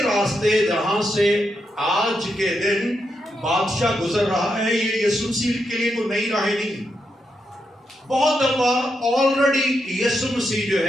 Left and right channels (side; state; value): both; normal; correlation 0.83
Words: راستے جہاں سے آج کے دن بادشاہ گزر رہا ہے، یہ یسوع مسیح کے لیے کوئی نئی راہیں نہیں. بہت دفعہ آلریڈی یسوع مسیح جو